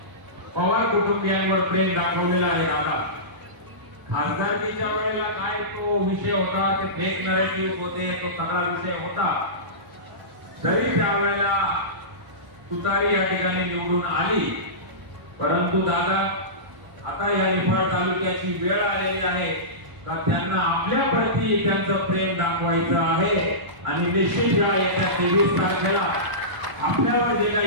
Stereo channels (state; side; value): late; left; 1.0 ms